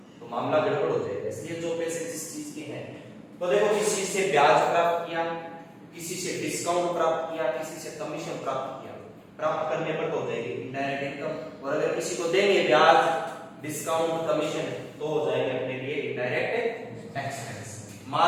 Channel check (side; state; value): both; identical; correlation 1.00